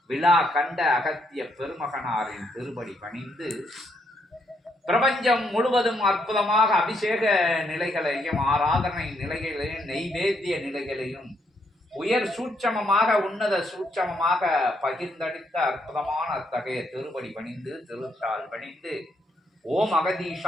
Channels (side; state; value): both; normal; correlation 0.75